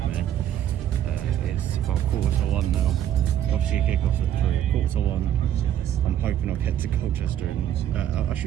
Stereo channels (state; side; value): quieter; left; 10.9 dB